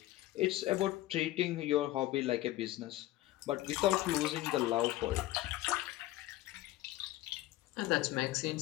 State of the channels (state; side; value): quieter; right; 16.3 dB